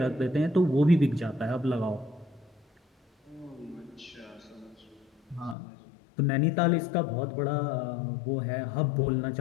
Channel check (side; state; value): right; drops out; at 5.6 s